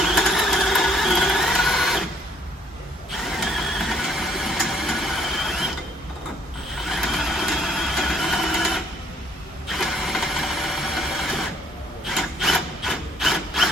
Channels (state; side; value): normal; both; correlation 0.63